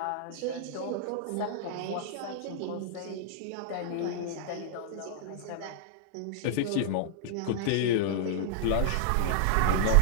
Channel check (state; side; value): different; both; correlation -0.01